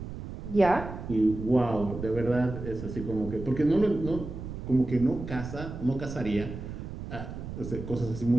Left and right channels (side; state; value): right; noise; rumble, 9 dB below the sound